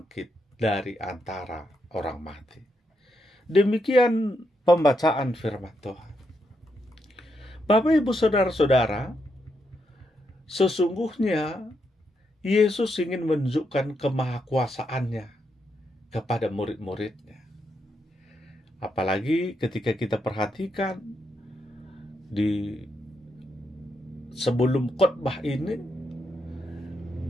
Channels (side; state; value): both; normal; correlation 0.81